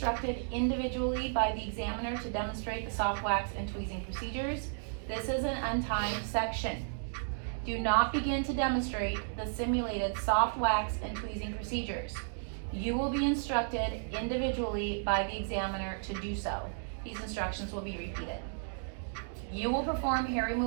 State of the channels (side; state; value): left; silent; digital silence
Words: individually by the examiner to demonstrate the soft wax and tweezing procedures. This is an untimed section. Do not begin to demonstrate the simulated soft wax and tweezing procedures. You will be instructed individually by the examiner to do so. These instructions will be repeated. You will perform hair